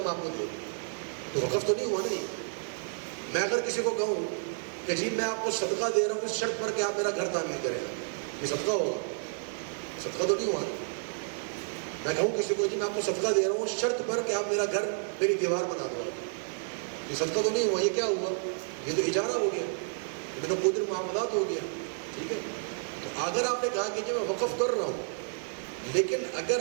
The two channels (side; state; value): left; silent; digital silence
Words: آپ کو دوں. تو وقف تو نہیں ہوا نہیں. میں اگر کسی کو کہوں کہ جی میں آپ کو صدقہ دے رہا ہوں اس شرط پر کہ آپ میرا گھر تعمیر کریں گا، یہ صدقہ ہوگا؟ صدقہ تو نہیں ہوا. میں کہوں کسی کو جی میں آپ کو صدقہ دے رہا ہوں اس شرط پر کہ آپ میرا گھر، میری دیوار بنا دو، یہ صدقہ تو نہیں ہوا. یہ کیا ہوا؟ یہ تو اجارہ ہو گیا، یہ تو عقود المعاوضات ہو گیا، ٹھیک ہے. تو اگر آپ نے کہا کہ جی میں وقف کر رہا ہوں، لیکن اگر